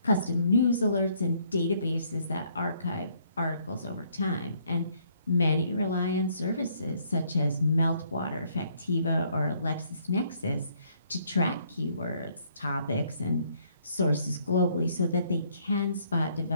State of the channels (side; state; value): both; inverted; correlation -0.67